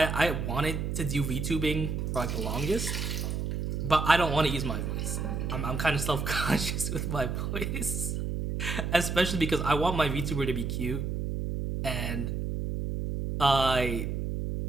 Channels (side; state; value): right; noise; hum, 2 dB below the sound